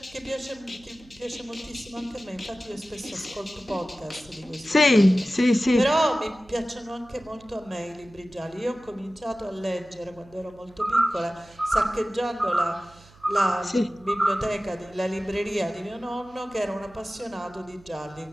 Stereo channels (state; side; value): noise; right; hum, 25 dB below the sound